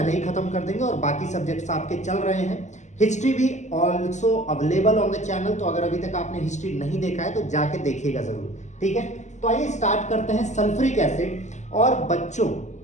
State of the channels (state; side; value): late; right; 0.34 ms